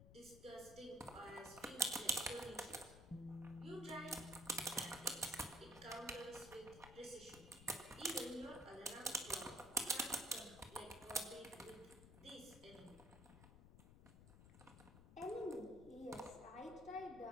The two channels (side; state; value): left; noise; rumble, 16 dB below the sound